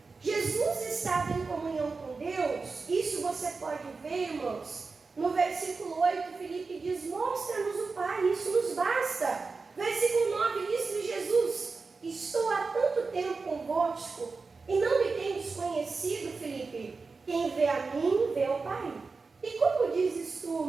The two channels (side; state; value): left; quieter; 4.3 dB